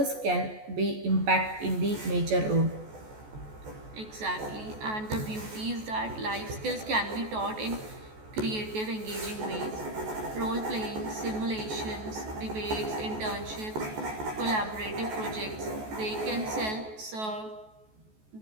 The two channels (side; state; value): left; late; 14 ms